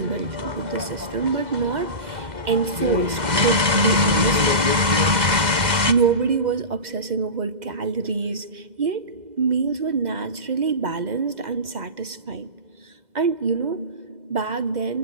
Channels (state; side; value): late; left; 2.0 ms